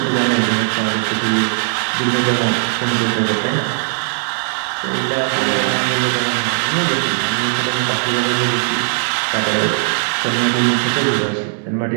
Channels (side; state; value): left; silent; digital silence